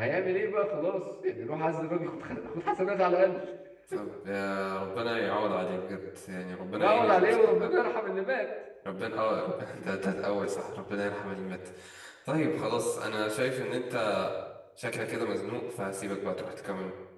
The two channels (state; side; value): identical; both; correlation 1.00